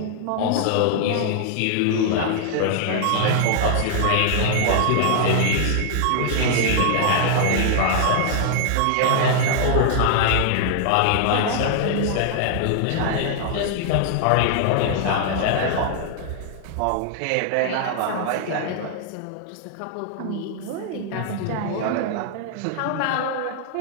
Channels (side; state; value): both; different; correlation 0.00